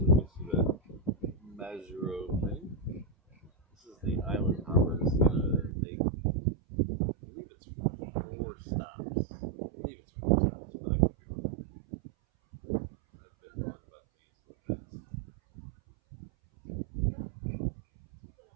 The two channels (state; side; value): drops out; left; at 5.8 s